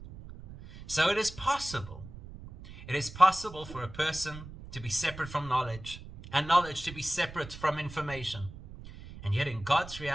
So it is possible. It is possible for a person to be separate from knowledge, and knowledge to be separate from information. And yet in God's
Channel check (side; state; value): right; noise; rumble, 14 dB below the sound